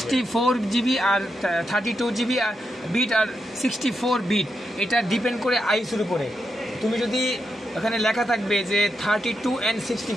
জিবি আর 32 জিবি বিট আর 64 বিট, এটা ডিপেন্ড করে আইএসওর উপরে। তুমি যদি ওখানে লেখা থাকবে যে 32 and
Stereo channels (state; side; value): normal; both; correlation 0.85